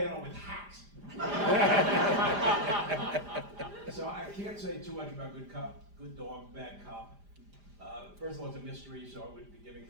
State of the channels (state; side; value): late; left; 5.0 ms